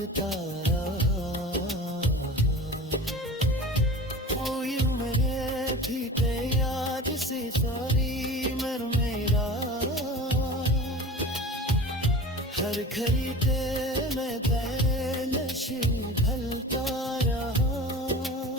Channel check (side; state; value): both; normal; correlation 0.36